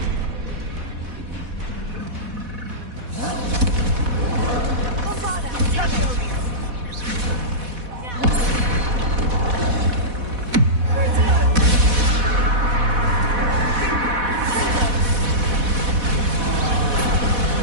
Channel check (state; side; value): late; left; 4.1 ms